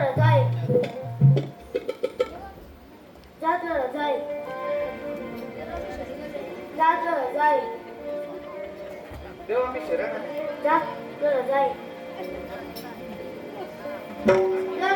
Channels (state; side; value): identical; both; correlation 1.00